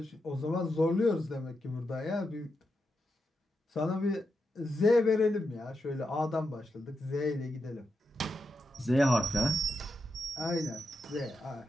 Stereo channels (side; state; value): both; normal; correlation 0.86